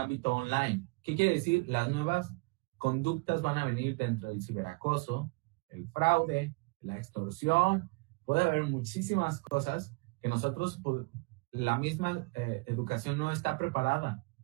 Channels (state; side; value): quieter; left; 28.6 dB